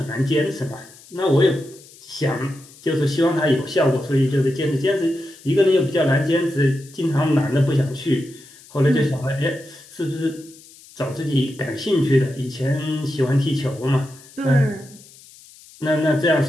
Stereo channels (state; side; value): noise; left; hiss, 23 dB below the sound